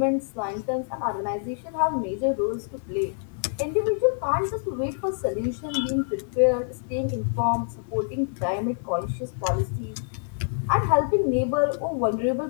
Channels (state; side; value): silent; right; 61 dB below the other